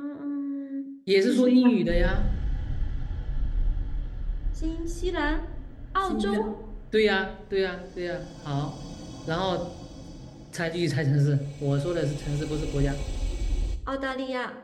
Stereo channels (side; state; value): both; identical; correlation 1.00